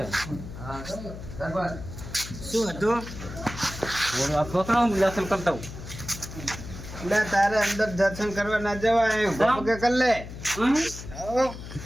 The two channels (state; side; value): noise; left; hum, 11 dB below the sound